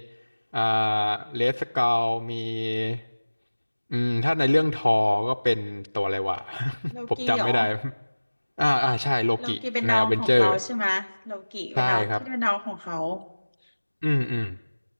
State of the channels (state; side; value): inverted; both; correlation -1.00